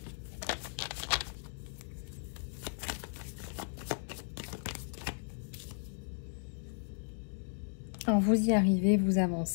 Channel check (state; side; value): silent; right; digital silence